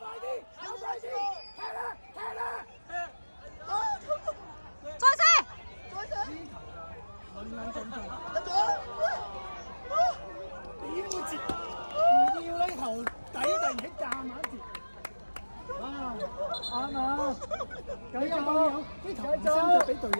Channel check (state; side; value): inverted; both; correlation -1.00